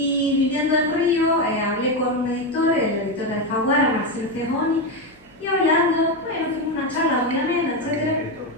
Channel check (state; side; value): normal; both; correlation 0.11